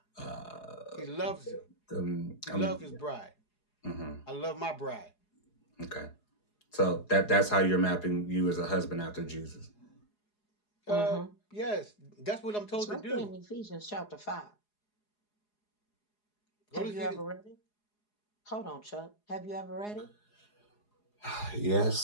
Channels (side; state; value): right; late; 4.8 ms